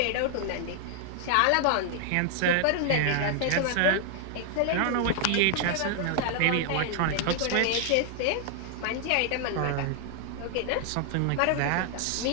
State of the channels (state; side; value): different; both; correlation 0.00